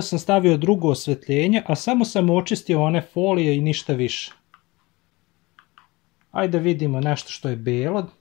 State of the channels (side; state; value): right; quieter; 22.8 dB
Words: sam stavio drugo osvetljenje, a samo sam očistio one folije i ništa više. Ajde vidimo nešto što je belo.